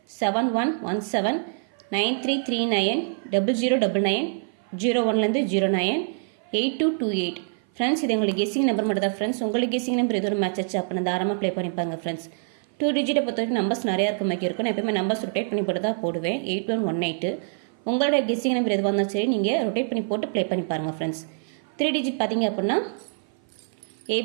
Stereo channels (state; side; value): silent; left; 56 dB below the other